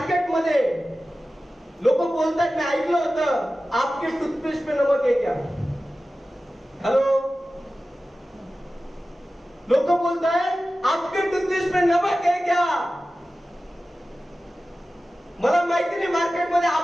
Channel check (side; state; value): both; normal; correlation 0.95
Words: लोक बोलतात, मी ऐकलं होतं, आपके टूथपेस्ट पे नमक है क्या? हॅलो, लोक बोलतात आपके टूथपेस्ट पे नमक है क्या? मला माहिती नहीं मार्केट में